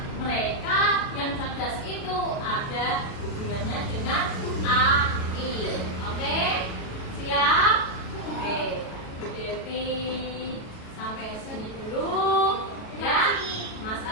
mereka yang cerdas itu ada hubungannya dengan AI. Oke? Siap? Oke. Bu Devi sampai sini dulu ya. Mas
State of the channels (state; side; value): late; right; 37 ms